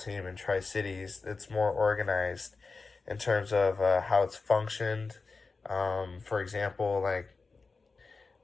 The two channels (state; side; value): quieter; right; 4.2 dB